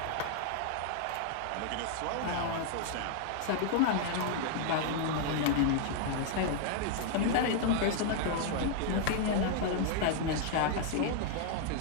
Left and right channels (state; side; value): different; both; correlation 0.00